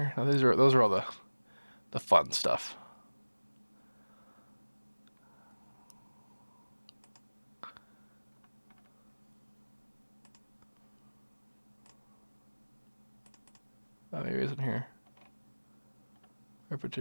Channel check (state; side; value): inverted; both; correlation -1.00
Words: No, those are all the fun stuff. Oh, maybe it's in here.